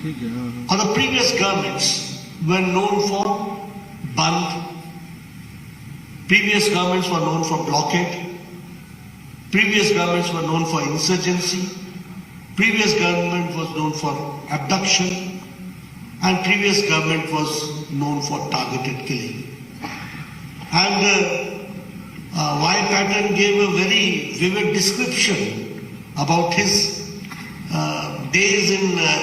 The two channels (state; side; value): identical; both; correlation 1.00